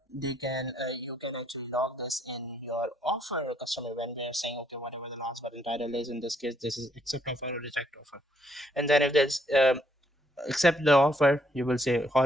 can actually log this in your offer or customer when we are saying, okay, whatever the last one title is, in this case this is accept offer or reject offer. And then if there's accept the offer, you will say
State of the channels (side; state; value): both; normal; correlation 0.71